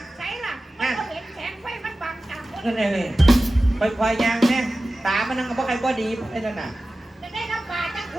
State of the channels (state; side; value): normal; both; correlation 0.95